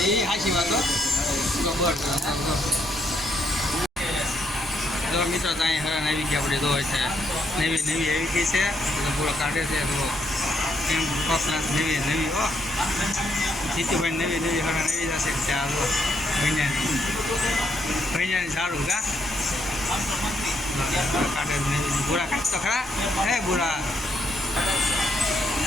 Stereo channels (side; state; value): both; normal; correlation 0.75